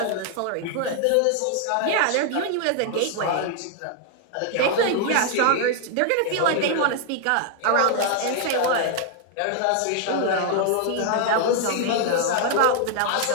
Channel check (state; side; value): different; both; correlation 0.00